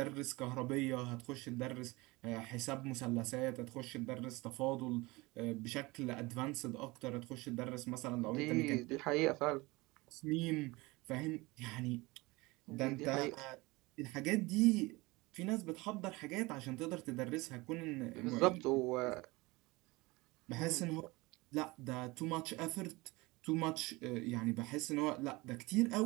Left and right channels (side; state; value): left; quieter; 22.8 dB